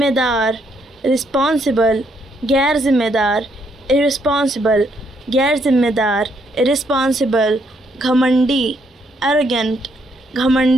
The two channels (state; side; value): normal; both; correlation 0.73